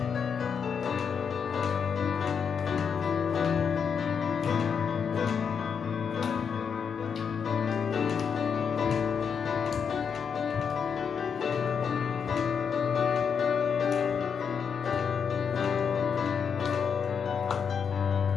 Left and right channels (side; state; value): right; quieter; 6.7 dB